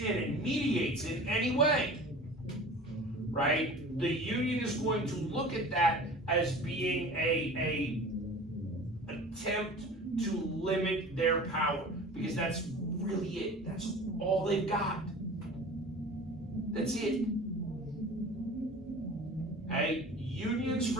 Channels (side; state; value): both; normal; correlation 0.40